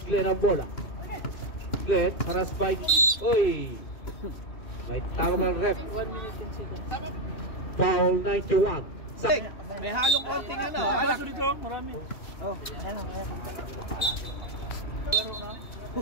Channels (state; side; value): late; right; 2.6 ms